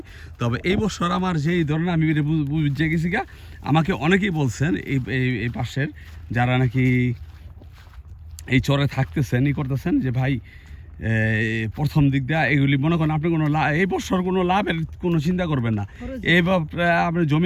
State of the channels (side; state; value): both; identical; correlation 1.00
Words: তবে এই বছর আমার যেই ধরনের আমি বুঝে গেছি গা, আমাকে অনেকেই বলছেন এই পাশের যারা নাকি এই চরে থাকতেছেন ই করতেছেন যে ভাই প্রথম দিক দিয়ে এগুলি মনে করেন আপনি কোনো এই বছর কোনো লাভের কোনো চিন্তা করবেন না। এইবার আপনার